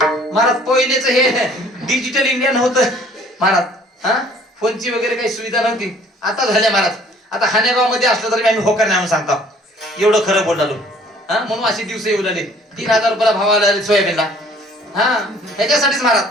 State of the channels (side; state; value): both; normal; correlation 0.56